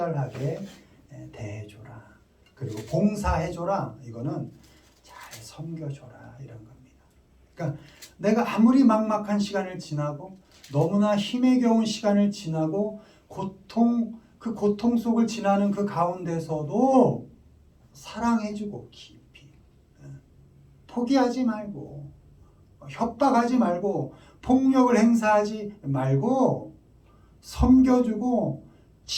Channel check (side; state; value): both; identical; correlation 1.00